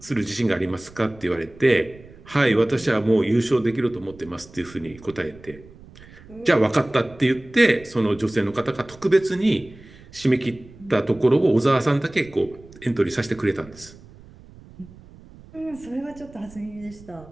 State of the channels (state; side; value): noise; right; rumble, 21 dB below the sound